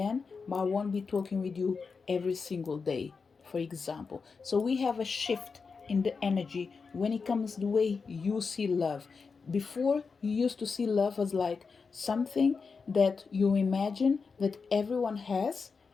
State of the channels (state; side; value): quieter; right; 5.0 dB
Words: but I won't be talking with you every single day, for example. So we have a shift in the energy when it comes to the way you see love. Before, you used to see love as like something that you imagine that everyone has